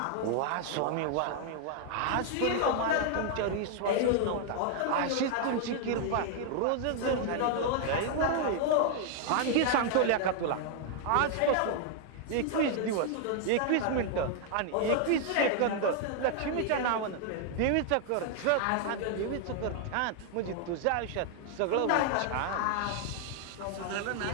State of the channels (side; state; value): both; different; correlation 0.00